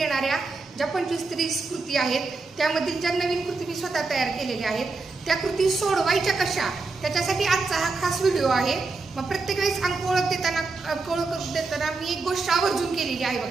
ज्या 25 ते 30 कृती आहेत त्यामधील ज्या नवीन कृती मी स्वतः तयार केलेल्या आहेत त्या कृती सोडवायच्या कशा, त्याच्यासाठी आजचा हा खास व्हिडिओ आहे। मग प्रत्येक वेळेस अंक ओळख देताना मी एक गोष्ट आवर्जून केलेली आहे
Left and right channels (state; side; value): quieter; left; 3.9 dB